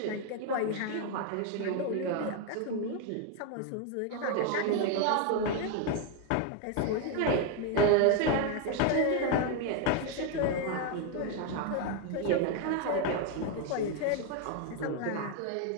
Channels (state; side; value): different; both; correlation 0.01